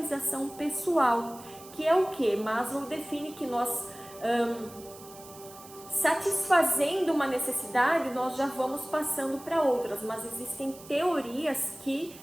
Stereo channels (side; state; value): right; noise; hiss, 19 dB below the sound